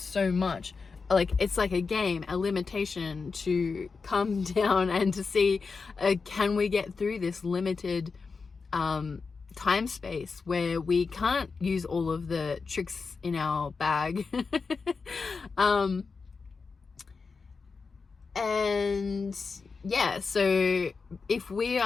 much. Like it's like a game, a limitation to come down and to see, can we get through this limited time space where we can't use all of the tricks in our bag. And yeah, so if we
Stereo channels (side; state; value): right; quieter; 4.8 dB